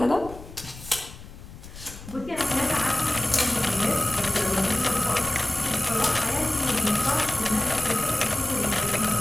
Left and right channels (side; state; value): left; noise; rumble, 15 dB below the sound